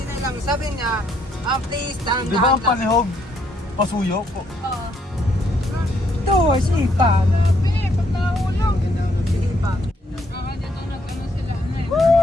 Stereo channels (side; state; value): both; normal; correlation 0.71